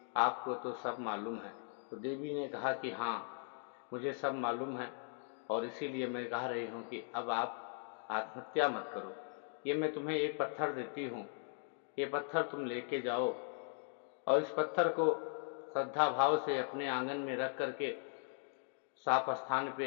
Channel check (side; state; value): right; silent; 52 dB below the other